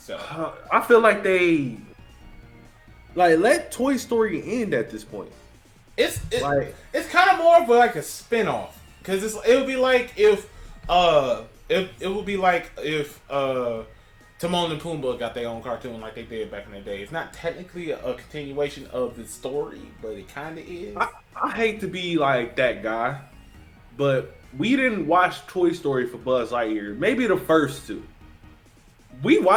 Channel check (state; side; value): identical; both; correlation 1.00